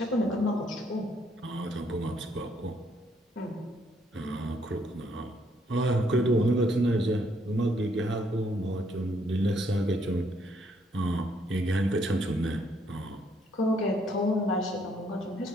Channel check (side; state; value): both; normal; correlation 0.70